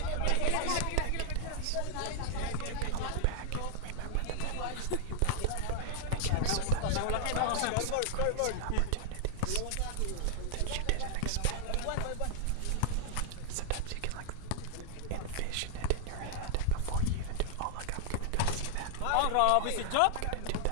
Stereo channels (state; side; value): different; both; correlation 0.00